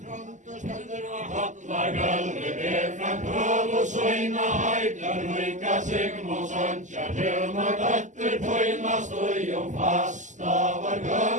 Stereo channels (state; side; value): late; left; 0.36 ms